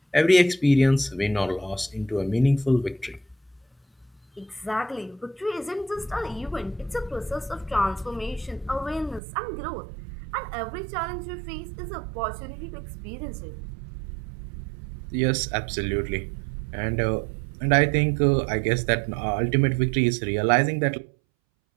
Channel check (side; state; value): left; drops out; at 9.2 s